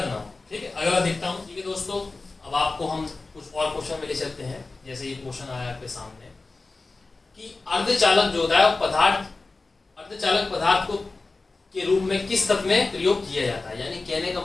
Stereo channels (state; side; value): quieter; right; 3.6 dB